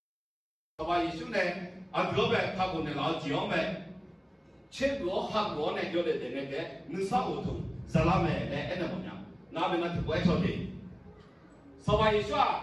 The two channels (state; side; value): identical; both; correlation 1.00